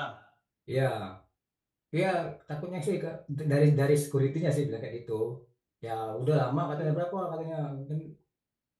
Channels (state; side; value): identical; both; correlation 1.00